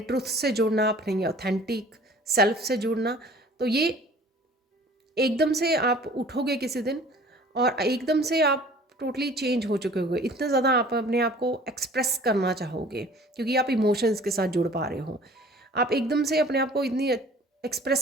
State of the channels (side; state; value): both; normal; correlation 0.49